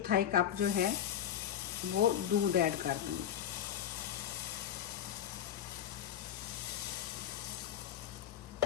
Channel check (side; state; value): right; quieter; 10.1 dB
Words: कप जो है वो दूध ऐड कर दूँगी।